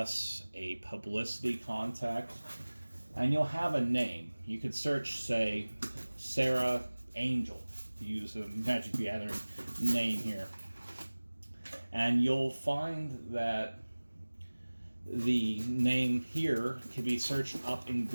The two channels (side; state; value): both; inverted; correlation -1.00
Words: a publicity contact, and you'll have a name. You could search, say, Sarah Angel, to use a Magic the Gathering name here. And you'll find that the name here can be searched up in